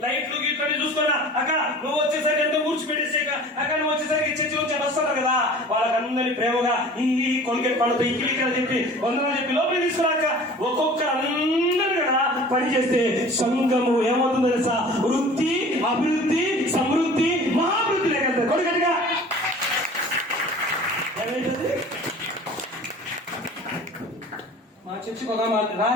లైట్లు గీట్లు చూసుకున్నా అక్క, నువ్వు వచ్చేసరికి ఎంతో ఊడ్చిపెట్టేసాక అక్క, నువ్వు వచ్చేసరికి చర్చి నుంచి వస్తున్నారు కదా, వాళ్ళకందరినీ ప్రేమగా ఈ కొలికెట్ పళ్ళతో ఈ కిలికలు చెప్పి వందలు చెప్పి లోపలికి తీసుకున్నాక ఒక్కొక్కరు అందరూ కదా పని చేస్తే సంఘము ఏమవుతుందో తెలుసా? వృద్ధి, అభివృద్ధి, సమృద్ధి, మహాభివృద్ధి లేకపోతే కొడుకటిగా ఏమైతుంది? మా చర్చికి ఒక మాట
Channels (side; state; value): both; normal; correlation 0.44